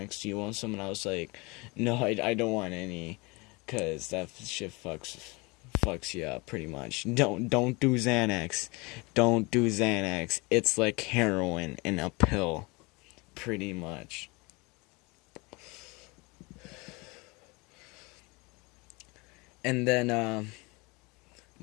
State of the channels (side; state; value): right; quieter; 26.3 dB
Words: Do you want some?" And I was like, "No, I don't want any, cause that shit fucks you up pretty much. Don't do Xanax. Don't do Xanax. It's like heroin in a pill, pretty much." And then